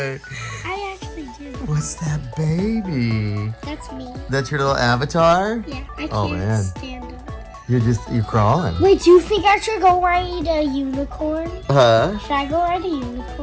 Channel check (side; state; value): both; identical; correlation 1.00